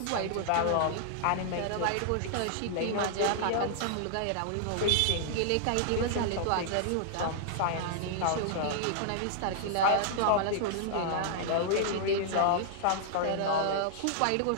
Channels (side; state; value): both; different; correlation -0.01